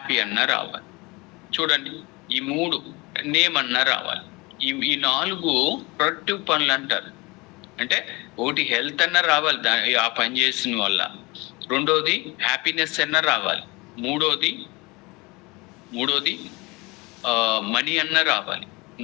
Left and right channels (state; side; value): quieter; right; 24.7 dB